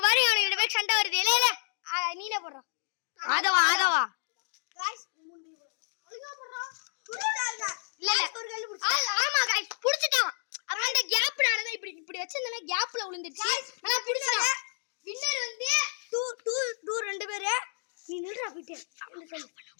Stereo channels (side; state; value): right; silent; 58 dB below the other